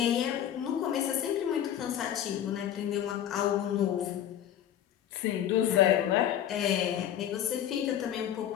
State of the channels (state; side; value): quieter; right; 10.6 dB